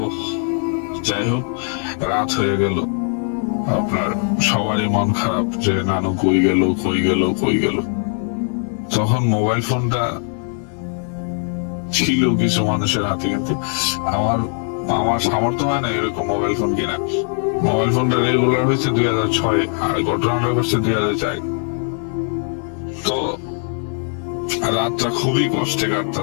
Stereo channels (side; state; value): right; silent; 55 dB below the other